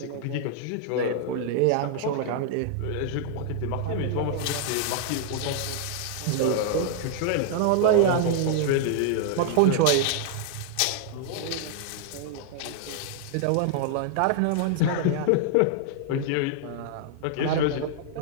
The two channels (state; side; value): different; both; correlation -0.01